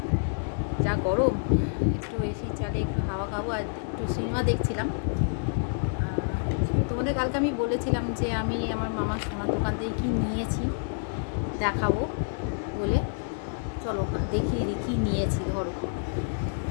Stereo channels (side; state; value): right; silent; digital silence